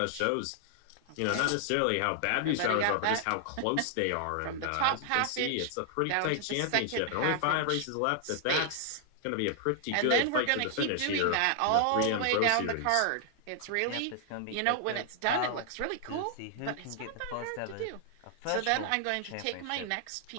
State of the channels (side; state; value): both; different; correlation 0.00